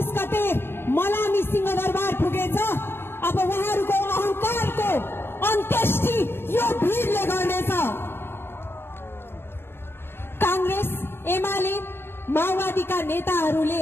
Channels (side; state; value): right; late; 0.11 ms